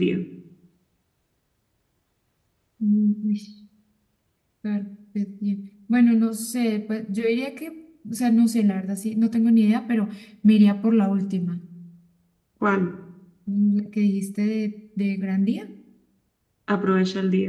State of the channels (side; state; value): both; identical; correlation 1.00